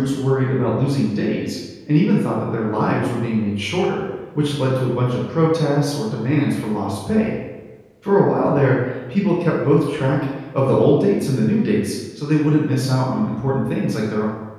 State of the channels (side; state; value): both; identical; correlation 1.00